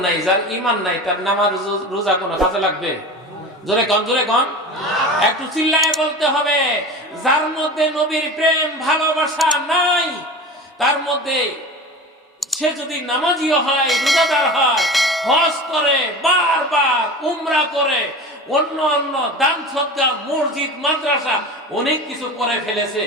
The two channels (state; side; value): normal; both; correlation 0.33